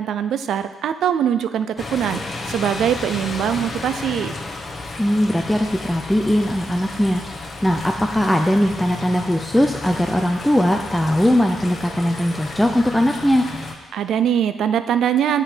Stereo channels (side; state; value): both; normal; correlation 0.86